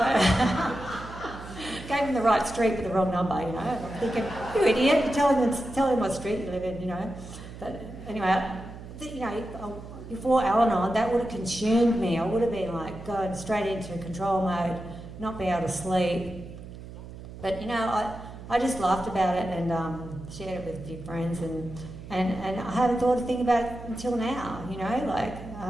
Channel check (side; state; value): right; noise; hum, 13 dB below the sound